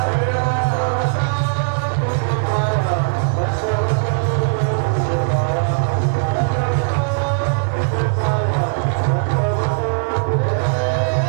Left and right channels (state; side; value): silent; left; digital silence